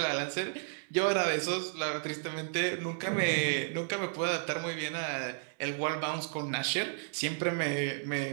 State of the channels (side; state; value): left; silent; 56 dB below the other